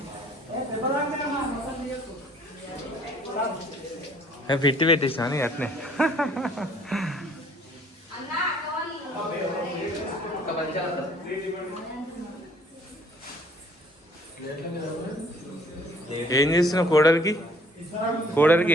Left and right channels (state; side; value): normal; both; correlation 0.58